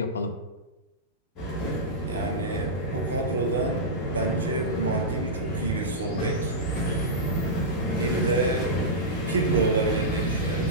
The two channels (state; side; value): normal; both; correlation -0.13